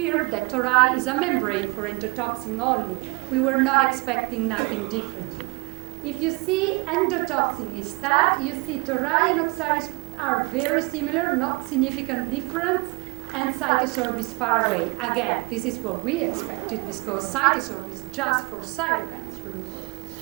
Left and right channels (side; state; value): left; quieter; 28.4 dB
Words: that Tori is a membrane for endotoxin only. We were not expecting nothing differently. If you see endotoxin instead, you see Tori and Oxiris are very similar, not significant difference, and Cytosorb is far away. Again, this is what we expected because Cytosorb is just for cytokines removal.